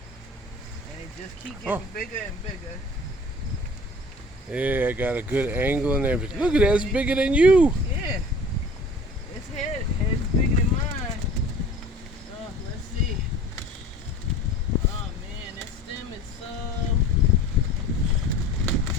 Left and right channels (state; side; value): normal; both; correlation 0.45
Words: And it just keep Oh. getting bigger and bigger. Yeah, I got a good angle and everything. Look at that, it's bigger than you. Yeah. Its head's bigger than mine. Oh, let's see. Oh man, that stem is so.